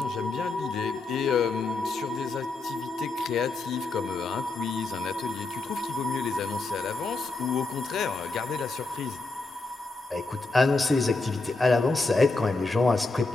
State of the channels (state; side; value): quieter; right; 3.5 dB